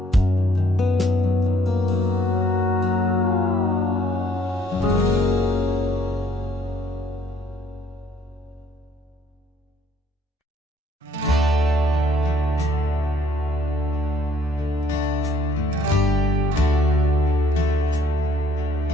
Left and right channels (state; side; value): normal; both; correlation 0.62